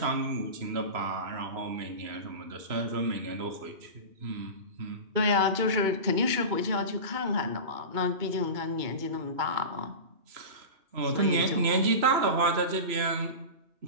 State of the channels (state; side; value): late; left; 3.0 ms